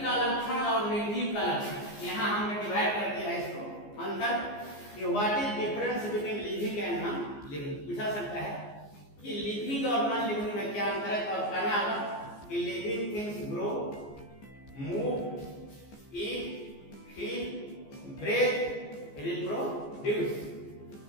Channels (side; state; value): right; late; 14 ms